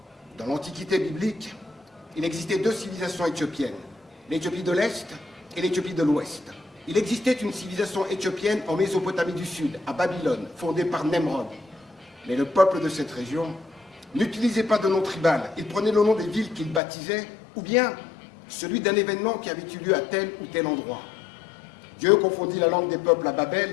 Dans l'Antiquité biblique, il existait 2 civilisations éthiopiennes, l'Éthiopie de l'Est et l'Éthiopie de l'Ouest. Il existait une civilisation éthiopienne en Mésopotamie du Sud, à Babylone, fondée par Nemrod. Mais le peuple de cette région n'utilisait pas de nom tribal, il prenait le nom des villes qu'il baptisait, ou bien celui d'un événement qui avait eu lieu à tel ou tel endroit. Dieu confondit la langue des peuples à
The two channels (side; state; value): right; drops out; at 16.8 s